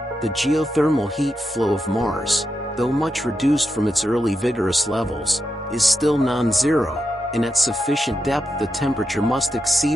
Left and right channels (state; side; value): normal; both; correlation 0.87